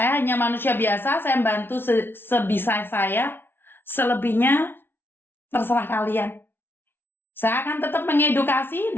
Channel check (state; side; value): late; right; 0.11 ms